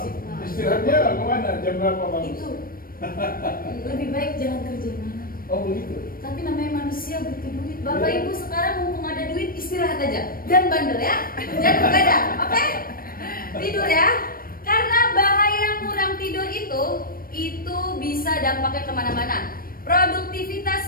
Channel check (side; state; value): right; late; 0.42 ms